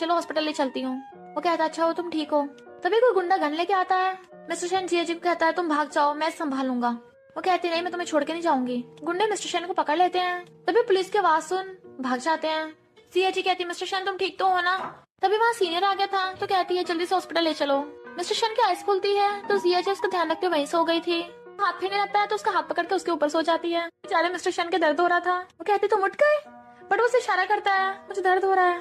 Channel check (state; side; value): identical; both; correlation 1.00